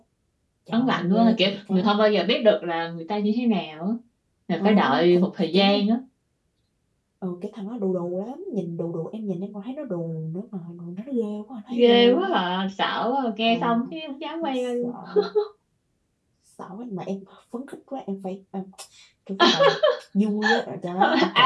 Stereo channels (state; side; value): identical; both; correlation 1.00